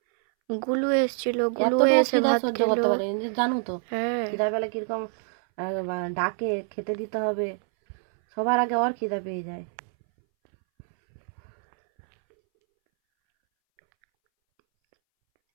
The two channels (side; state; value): left; silent; 61 dB below the other